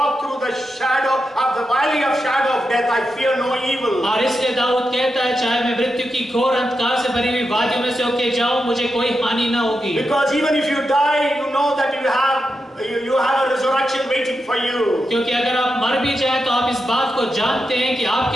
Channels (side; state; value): both; normal; correlation 0.88